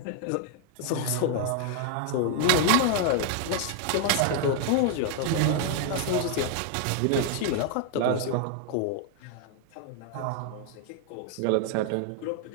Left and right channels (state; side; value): different; both; correlation 0.00